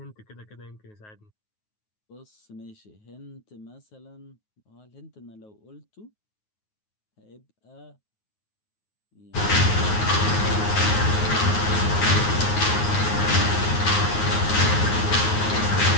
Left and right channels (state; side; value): late; right; 9.4 ms